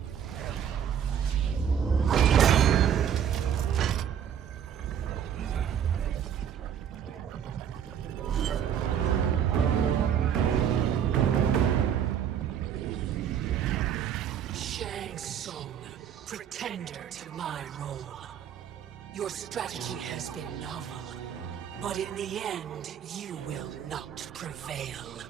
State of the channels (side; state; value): left; quieter; 8.8 dB